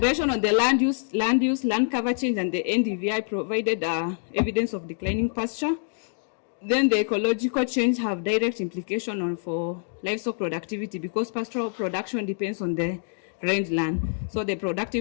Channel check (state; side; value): silent; right; digital silence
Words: on the land use, land cover change, and the NDVI provided evidence of declining pasture. Then the ecological change have direct implication for livestock productivity, because pastoral production depends on the rangeland. So the